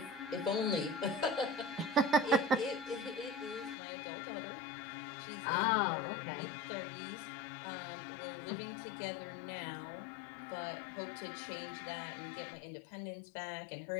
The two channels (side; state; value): right; drops out; at 3.8 s